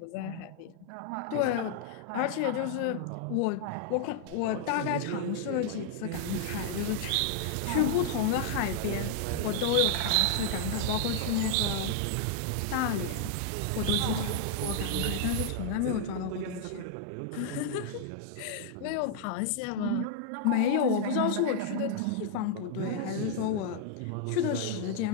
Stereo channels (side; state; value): both; different; correlation -0.01